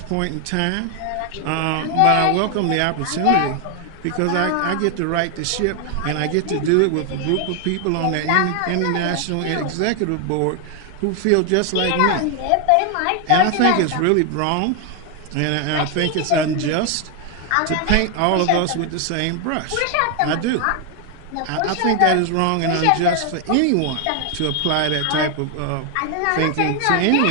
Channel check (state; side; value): different; both; correlation 0.00